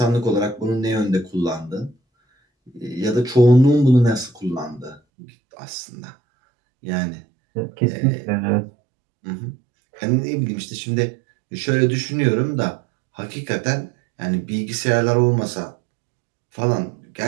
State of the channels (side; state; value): left; drops out; at 5.0 s